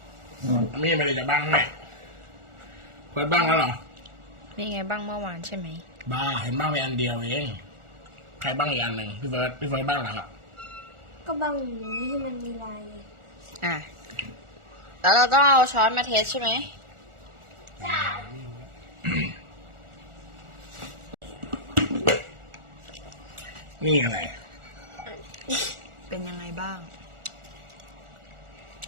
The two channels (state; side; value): late; left; 1.4 ms